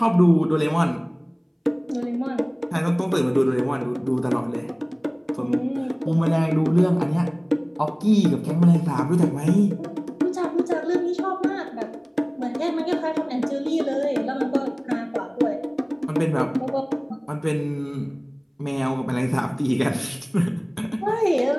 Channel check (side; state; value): both; identical; correlation 1.00